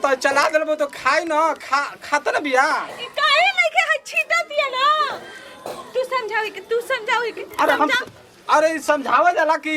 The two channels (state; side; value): identical; both; correlation 1.00